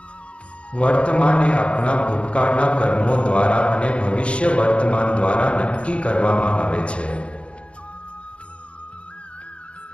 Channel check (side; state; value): right; late; 0.059 ms